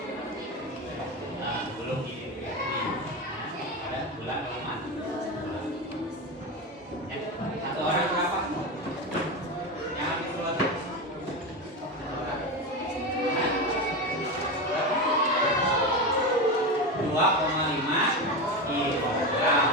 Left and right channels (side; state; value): both; normal; correlation 0.19